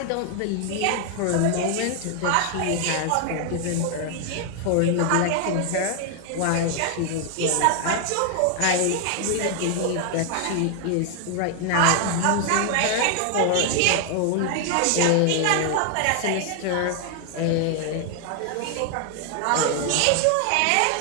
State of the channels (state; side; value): different; both; correlation 0.00